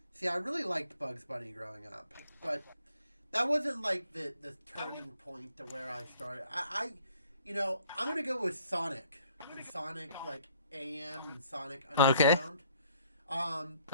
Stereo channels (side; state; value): both; inverted; correlation -0.62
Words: see, I really liked Bugs Bunny growing up, but that wasn't like the turning point to where I started. I'm gonna go with Sonic and Sonic like AM and Sonic Okay. Underground.